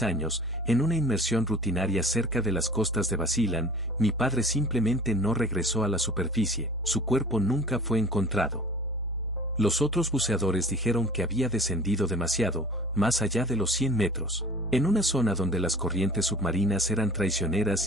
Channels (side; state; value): both; normal; correlation 0.44